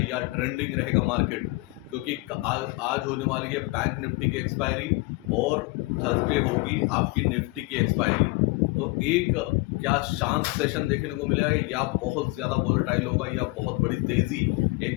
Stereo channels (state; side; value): quieter; right; 23.8 dB